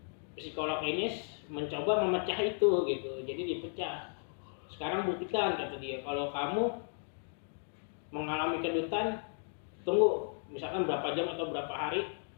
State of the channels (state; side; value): silent; right; 55 dB below the other